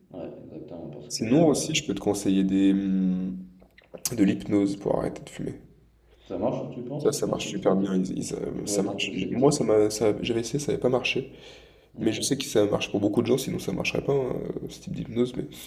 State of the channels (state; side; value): identical; both; correlation 1.00